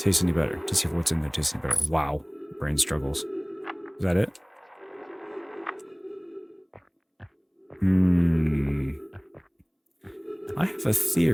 any better. To see if what's in there tastes any better. Wow. Brain struggles. Is that it? I have a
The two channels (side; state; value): both; identical; correlation 1.00